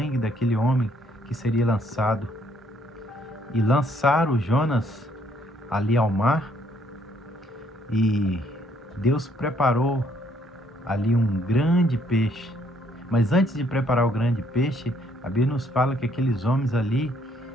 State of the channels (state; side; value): normal; both; correlation 0.67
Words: daquele homem que seria lançado. E lançaram Jonas ali ao mar, e Deus preparou ali um grande peixe. Mas antes de preparar o grande peixe, a Bíblia nos fala que aqueles homens ali